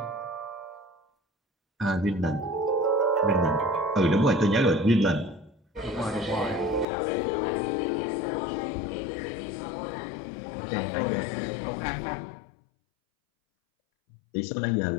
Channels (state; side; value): drops out; right; at 6.9 s